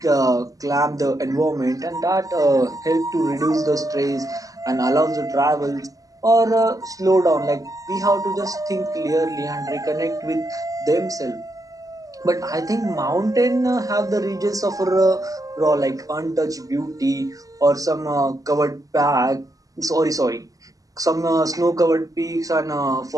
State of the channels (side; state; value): left; late; 0.17 ms